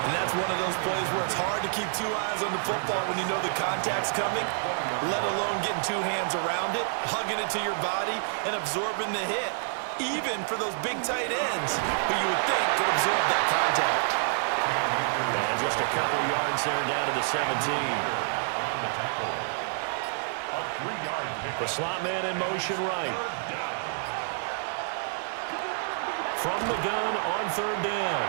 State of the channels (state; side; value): silent; left; 59 dB below the other